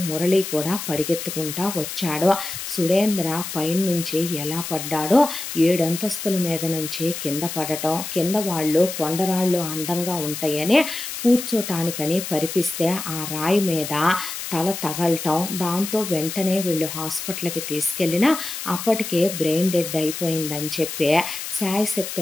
మురళి కూడా పరిగెత్తుకుంటా వచ్చాడు. సురేంద్ర పైనుంచి ఎలా పడ్డాడో 7 అంతస్తుల మీద నుంచి కింద పడటం, కింద వాళ్ళు కొండరాళ్ళు అందంగా ఉంటాయని కూర్చోటానికని పరిపిస్తే ఆ రాయి మీద తల తగలటం, దాంతో వెంటనే వీళ్ళు హాస్పిటల్కి తీసుకెళ్ళినా అప్పటికే బ్రెయిన్ డెడ్ అయిపోయిందని చెప్పి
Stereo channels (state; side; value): noise; left; hiss, 7 dB below the sound